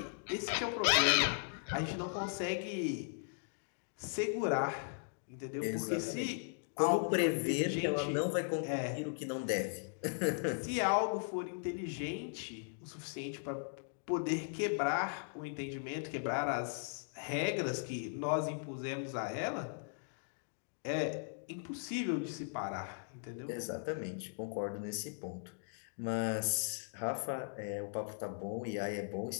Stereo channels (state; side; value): silent; right; digital silence